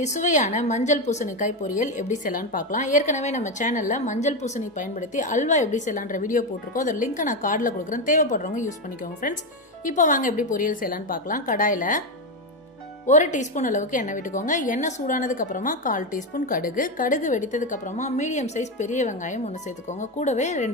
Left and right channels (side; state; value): both; normal; correlation 0.11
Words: சுவையான மஞ்சள் பூசணிக்காய் பொரியல் எப்படி செய்யலாம்னு பார்க்கலாம். ஏற்கனவே நம்ம சேனல்ல மஞ்சள் பூசணி பயன்படுத்தி அல்வா எப்படி செய்யலாம்ன்ற வீடியோ போட்டுருக்கோம். அதோட லிங்க் நான் கார்ட்ல கொடுக்குறேன். தேவைப்படுறவங்க யூஸ் பண்ணிக்கோங்க फ्रेंड्स. இப்போ வாங்க எப்படி பொரியல் செய்யலாம்னு பார்க்கலாம். கடாயில 1 டீஸ்பூன் அளவுக்கு எண்ணெய் விட்டுக்கோங்க. எண்ணெய் சூடானதுக்கு அப்புறமா 1/4 டீஸ்பூன் கடுகு. கடுகு வெடித்ததுக்கு அப்புறமா மீடியம் சைஸ் பெரிய வெங்காயம் ஒன்னு சேர்த்துக்கோங்க. கூடவே